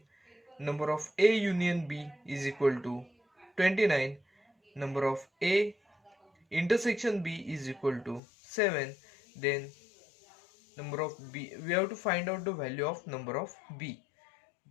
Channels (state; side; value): drops out; right; at 8.2 s